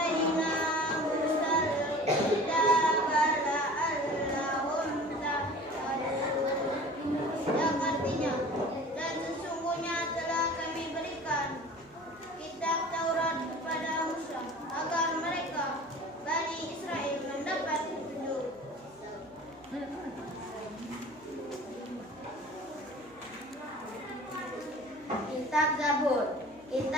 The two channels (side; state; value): right; noise; hum, 29 dB below the sound